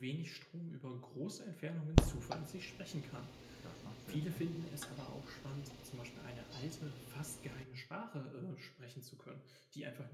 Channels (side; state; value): both; identical; correlation 1.00